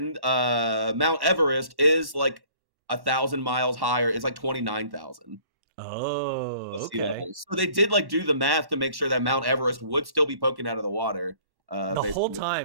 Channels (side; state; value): left; late; 1.1 ms